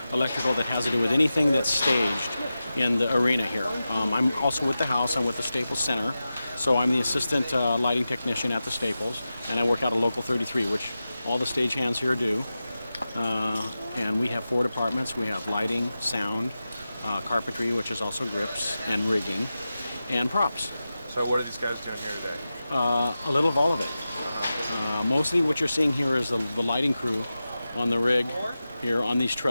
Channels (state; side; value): inverted; both; correlation -0.93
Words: electrical that has to do with anything that's staged in the arena here. I'm also with the house. I'm with the Staples Center, so I'm the assistant lighting technician at the Staples, and I work out of Local 33, which all the stagehands here do. And we have 4 departments. We have lighting, sound, carpentry, which is also grips, and rigging, and props. So what are these guys doing here today? A little of all of it. Mostly what you're seeing here is the lighting crew on the rig here on these